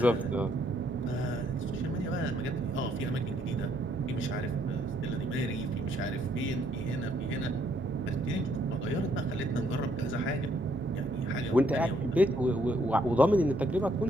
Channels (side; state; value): both; normal; correlation 0.70